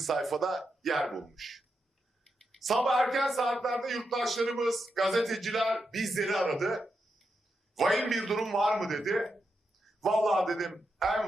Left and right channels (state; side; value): normal; both; correlation 0.85